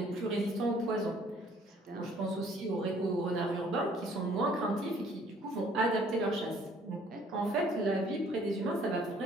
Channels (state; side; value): normal; both; correlation 0.59